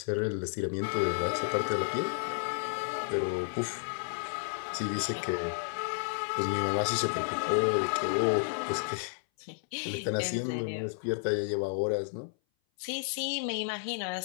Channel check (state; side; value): silent; right; 56 dB below the other